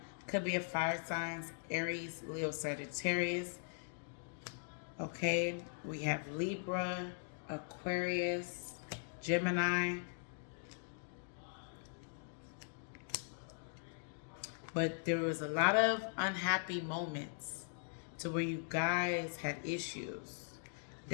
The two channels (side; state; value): right; silent; digital silence